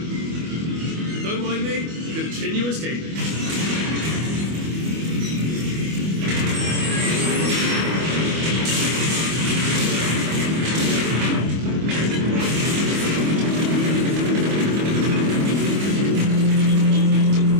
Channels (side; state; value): left; late; 25 ms